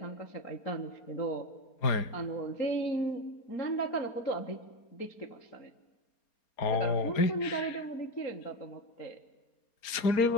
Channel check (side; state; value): right; late; 4.3 ms